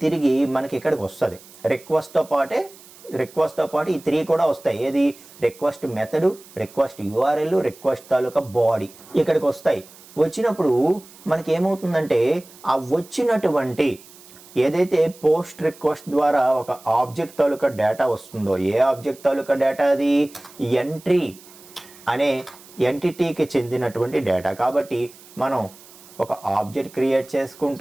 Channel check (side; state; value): right; noise; hiss, 22 dB below the sound